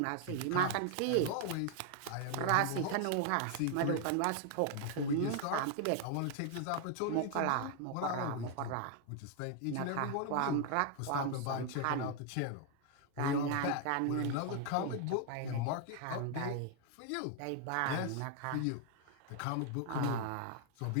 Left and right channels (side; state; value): both; different; correlation 0.00